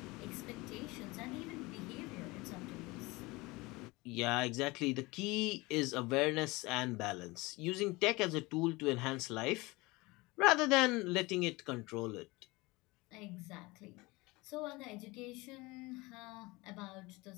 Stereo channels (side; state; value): right; quieter; 22.9 dB